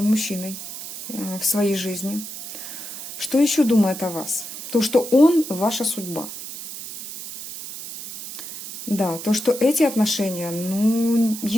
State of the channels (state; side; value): noise; right; hiss, 10 dB below the sound